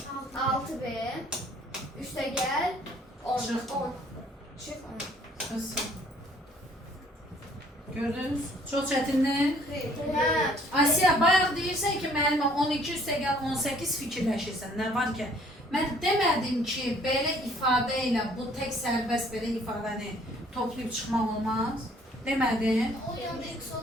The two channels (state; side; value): normal; both; correlation 0.59